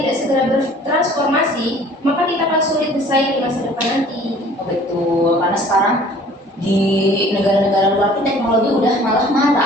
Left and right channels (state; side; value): normal; both; correlation 0.51